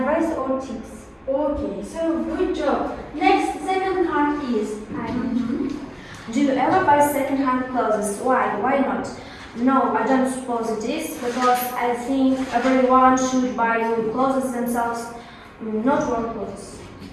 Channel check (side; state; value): both; identical; correlation 1.00